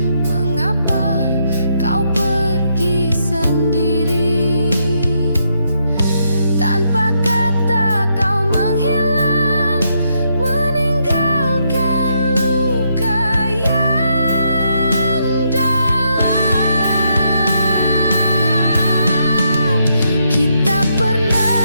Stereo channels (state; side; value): inverted; both; correlation -0.77